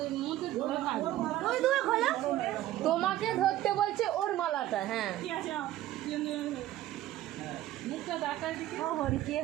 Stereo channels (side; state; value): left; quieter; 14.3 dB